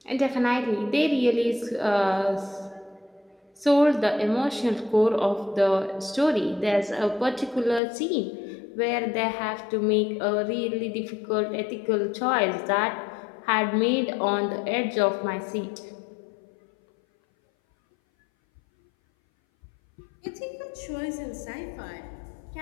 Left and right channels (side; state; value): right; drops out; at 7.8 s